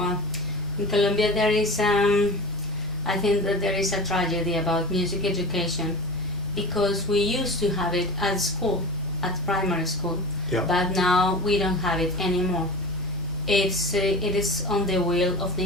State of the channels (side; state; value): both; normal; correlation 0.30